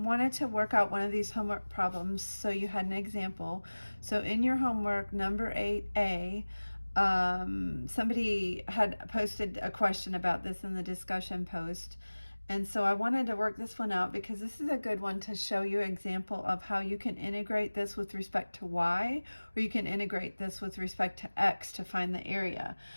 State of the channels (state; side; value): inverted; both; correlation -1.00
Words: to work out one of these homework problems so you had an example. So in your homework, number 8A, somebody had posted a question about this in the discussion post. And so I wanted to work this one out because this is a good one to show you an example of how you can integrate this with respect to y, or you can integrate this with respect to x to find the area.